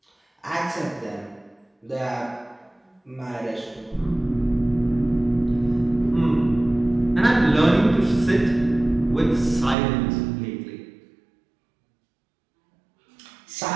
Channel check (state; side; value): drops out; left; at 9.8 s